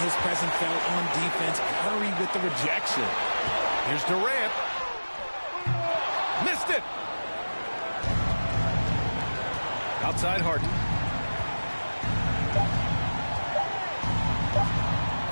his presence felt on defense. Curry with the rejection. Here's Durant. Missed it! Outside Harden.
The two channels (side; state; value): both; inverted; correlation -1.00